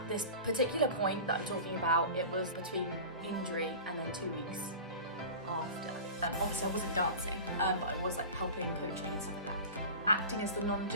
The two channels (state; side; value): inverted; both; correlation -0.34